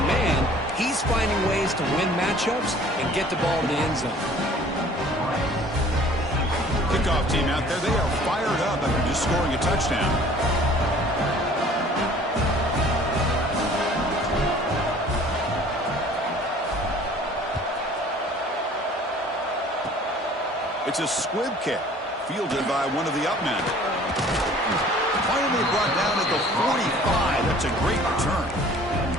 man, he's finding ways to win matchups and get the ball to the end zone. Kickoff team out there, they are fired up after just scoring a touchdown. It's a squib kick, fielded by one of the up men. Finally brought down at the 45. That's a great return.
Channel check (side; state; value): both; normal; correlation 0.51